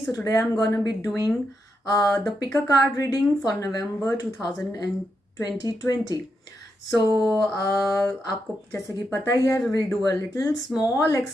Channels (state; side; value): normal; both; correlation 0.83